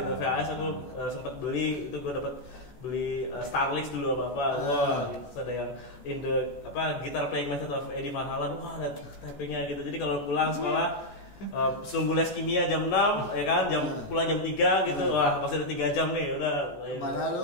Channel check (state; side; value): late; right; 14 ms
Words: VHS aku sempat beli itu gue dapat beli Starlix dulu apa wah gitu ada yang in the guitar playing method of Eddie Van Halen wah ada tappingnya gitu jadi kalau pulang sekolah sebelum les kimia jam 6 ya kan pulang jam 3 gitu wah masih ada 3 jam nih udah malah